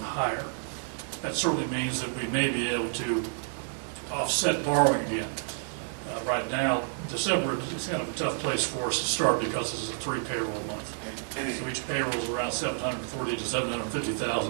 higher. That certainly means that we may be able to offset borrowing again. Right now, December is kind of a tough place for us to start because this is a 3 payroll month. So each payroll is around $740,000 to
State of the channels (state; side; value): silent; left; 56 dB below the other